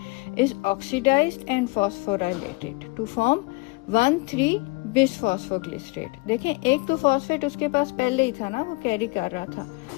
is oxidized and phosphorylated to form 1,3 bisphosphoglycerate. देखें, एक तो फॉस्फेट उसके पास पहले ही था ना, वो कैरी कर रहा था,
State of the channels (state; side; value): quieter; right; 26.8 dB